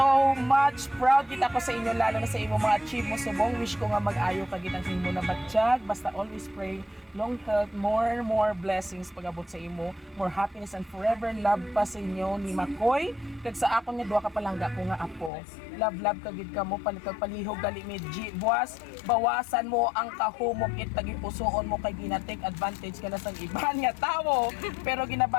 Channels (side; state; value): right; drops out; at 15.3 s